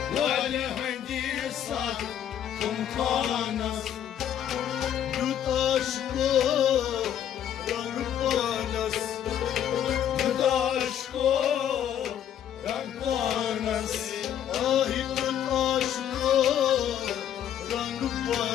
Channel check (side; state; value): right; quieter; 10.1 dB